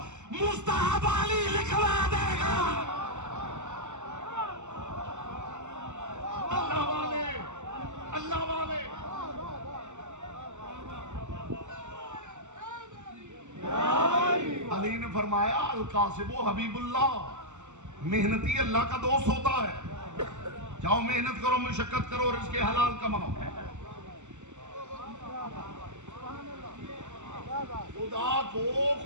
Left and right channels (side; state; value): left; late; 0.84 ms